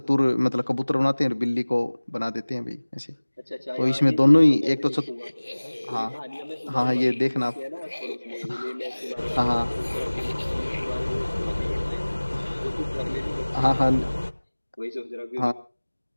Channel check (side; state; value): both; inverted; correlation -1.00